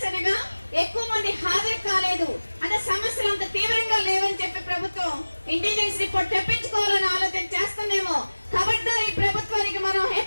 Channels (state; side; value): inverted; both; correlation -1.00